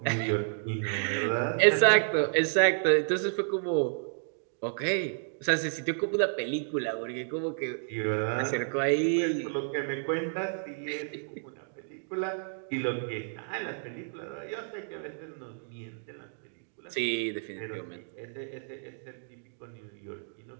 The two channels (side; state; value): left; silent; digital silence